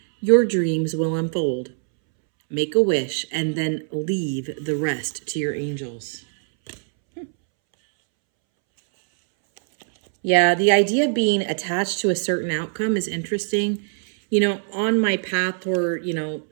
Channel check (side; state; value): left; silent; 64 dB below the other